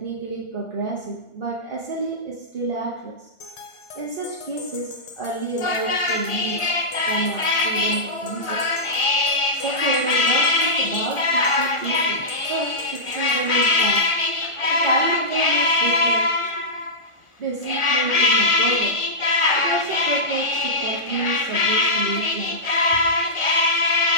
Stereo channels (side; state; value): right; late; 1.4 ms